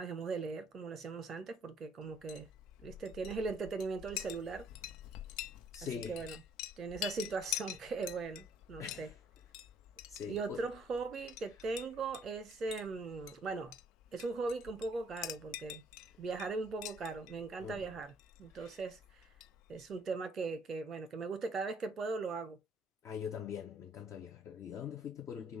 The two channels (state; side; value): normal; both; correlation 0.62